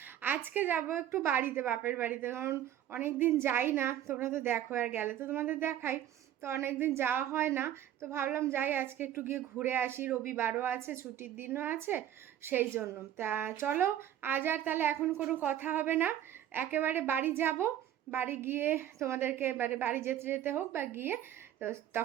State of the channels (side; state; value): left; quieter; 11.4 dB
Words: আজকে যাব একটু বাড়িতে, বাপের বাড়িতে, কারণ অনেক দিন যাই না। তোমরা তো দেখো, আর গেলে তো তোমাদের দেখাই, তো অনেক দিন যাওয়া হয় না। তো ভাবলাম যাই, আজকে একটু গিয়ে ঘুরে আসি, রবিবারও আছে, ছুটির দিনও আছে, সেই জন্য। তা চলো, আজ আর তাহলে এখন কোনো কথা হবে না, একেবারে বাড়ি যাব। বাড়ি গিয়ে তোমাদেরকে এবারে বাড়ি যেতে যেতে হোক বা গিয়ে, তো